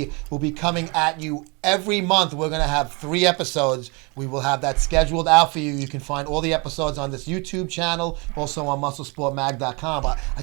will be coming at you every month. We're going to have 3 episodes. We will have that scheduled out for you. You can find all the episodes on this YouTube channel, also on MuscleSportMag.com. But I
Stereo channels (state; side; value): quieter; left; 29.8 dB